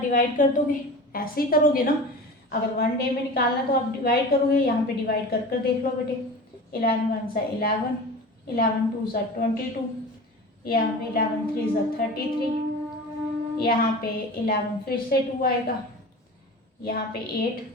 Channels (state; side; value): normal; both; correlation 0.34